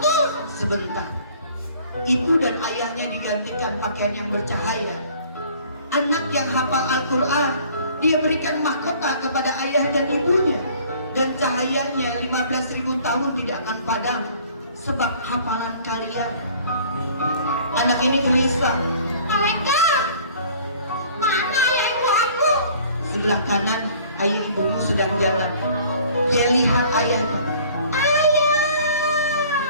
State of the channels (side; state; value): both; inverted; correlation -0.52